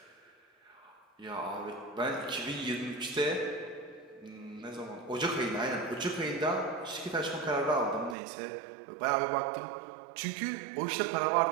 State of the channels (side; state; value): left; drops out; at 8.2 s